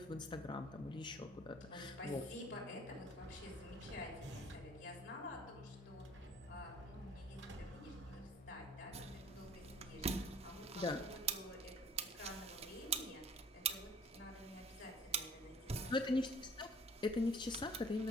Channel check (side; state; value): both; normal; correlation 0.52